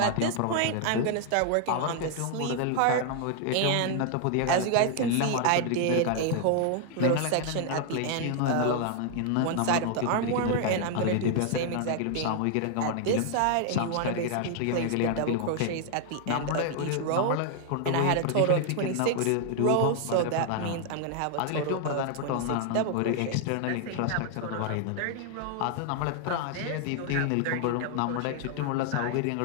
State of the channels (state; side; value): different; both; correlation 0.00